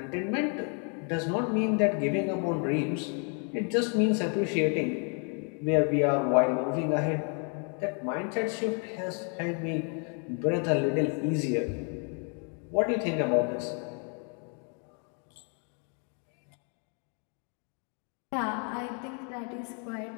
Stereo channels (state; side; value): quieter; right; 39.8 dB